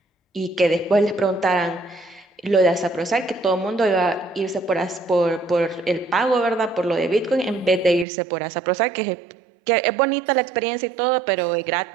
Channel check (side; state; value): left; drops out; at 8.1 s